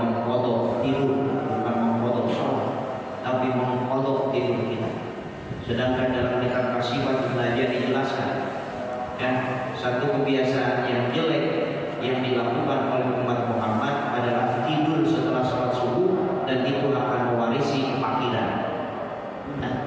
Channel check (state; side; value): identical; both; correlation 1.00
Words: tidur, bukan mengkodok sholat, tapi mengkodok tidur kita. Sedangkan dalam kitab Kasifat belajar dijelaskan, ya, satu kebiasaan yang jelek yang dilakukan oleh umat Muhammad adalah tidur setelah sholat subuh, dan itu akan mewarisi kefakiran. Nah,